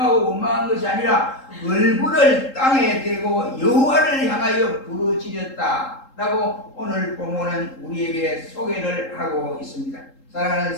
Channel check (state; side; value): late; right; 3.7 ms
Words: 원망한 것이 아니라 얼굴을 땅에 대고 여호와를 향하여 부르짖었다 라고 오늘 본문은 우리에게 소개를 하고 있습니다. 사랑하는